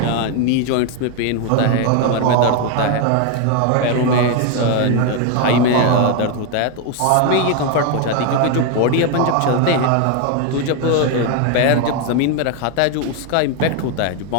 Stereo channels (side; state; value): both; different; correlation 0.01